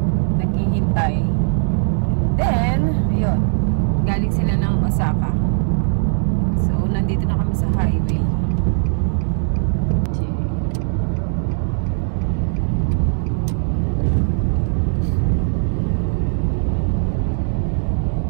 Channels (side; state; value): left; silent; digital silence